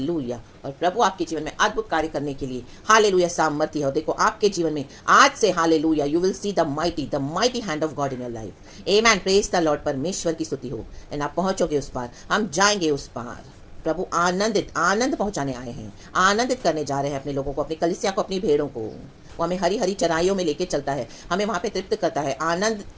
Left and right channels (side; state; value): both; identical; correlation 1.00